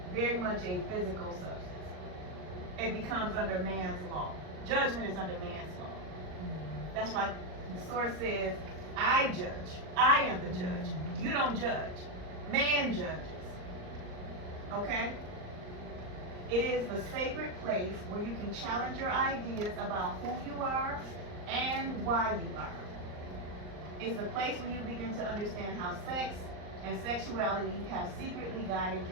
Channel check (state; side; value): late; left; 38 ms